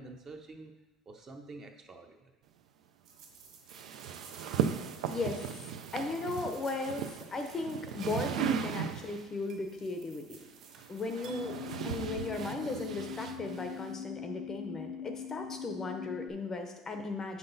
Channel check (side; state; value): both; normal; correlation 0.45